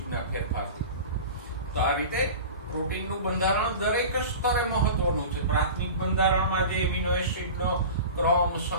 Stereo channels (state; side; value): inverted; both; correlation -0.34